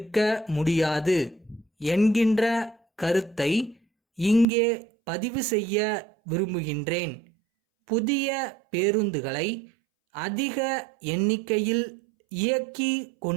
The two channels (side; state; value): left; drops out; at 4.5 s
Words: முடியாது என்கின்ற கருத்தை இங்கே பதிவு செய்ய விரும்புகின்றேன். புதிய பேருந்துகளை அதிக எண்ணிக்கையில் இயக்கி